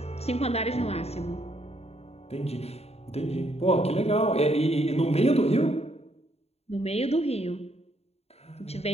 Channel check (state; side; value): late; right; 0.30 ms